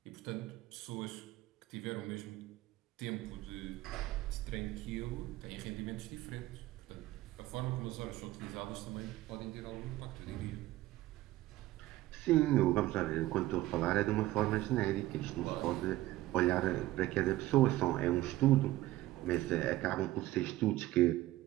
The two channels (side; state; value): left; quieter; 16.5 dB